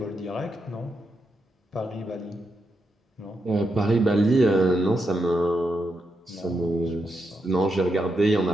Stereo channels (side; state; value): both; normal; correlation 0.84